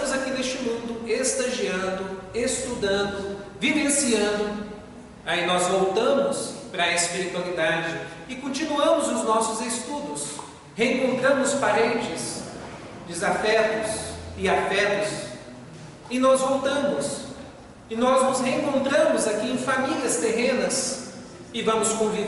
aqui neste mundo estagiando, estudando, vivenciando, aí nós voltamos para a espiritualidade e continuamos os nossos estudos, reencontramos parentes, desafetos e afetos, e nós voltamos, e nós nos reencontramos aqui em famílias terrenas, e vamos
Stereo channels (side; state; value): both; identical; correlation 1.00